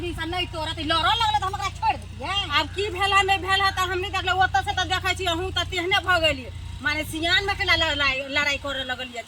से नहीं तोड़त लड़ो लगले त हमरा छोड़ दिए अब की भेला नहीं भेला त हमनी देखले ओत से त देखै छी अहू त तेहने भ गेली माने सियान में केला लड़ाई करे लगलिए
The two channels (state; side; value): identical; both; correlation 1.00